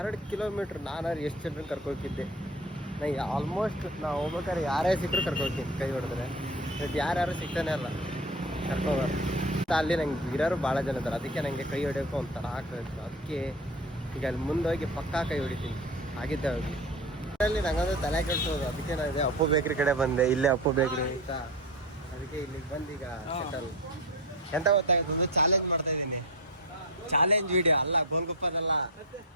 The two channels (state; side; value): normal; both; correlation 0.27